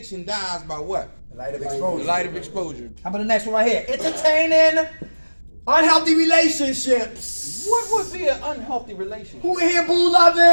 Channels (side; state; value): both; inverted; correlation -1.00